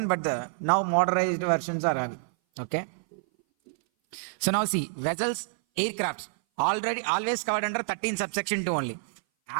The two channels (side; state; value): left; silent; 58 dB below the other